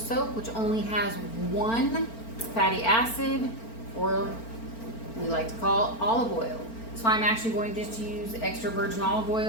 which only has one fatty acid, or we like to call olive oil. So I'm actually going to just use extra virgin olive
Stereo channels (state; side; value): late; right; 4.4 ms